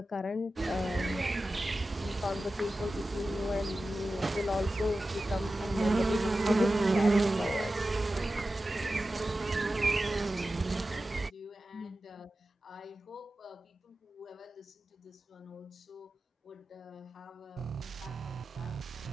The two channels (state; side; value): normal; both; correlation 0.94